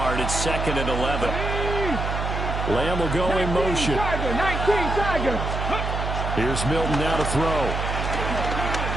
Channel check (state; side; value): noise; right; hum, 2 dB below the sound